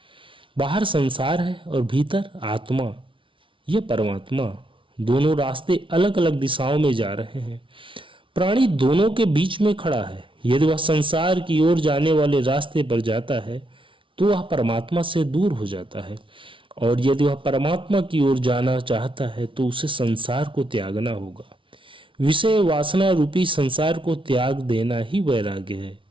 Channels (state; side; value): late; left; 0.25 ms